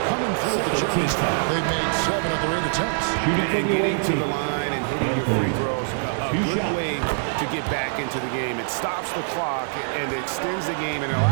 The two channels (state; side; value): silent; left; 57 dB below the other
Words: coming through at the charity stripe. They've made 7 of their 8 attempts. And getting to the line and hitting your free throws, a good way to get back into the game. It stops the clock and extends the game and